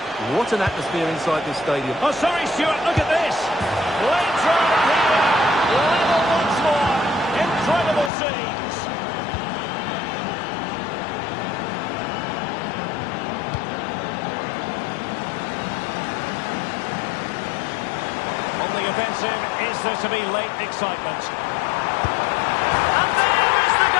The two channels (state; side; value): drops out; right; at 8.1 s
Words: What an atmosphere inside this stadium. Oh, sorry, Stuart, look at this. Late throw here. Level once more. Incredible scenes. On the offensive, is there to be late excitement? And there is the